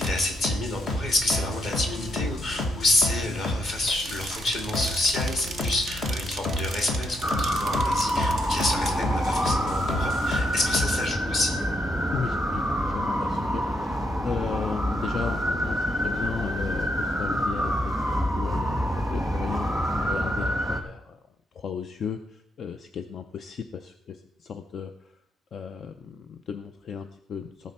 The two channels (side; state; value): both; normal; correlation 0.77